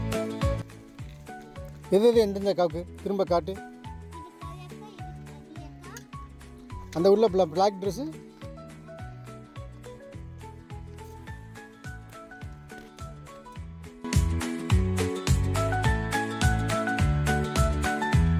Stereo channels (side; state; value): both; identical; correlation 1.00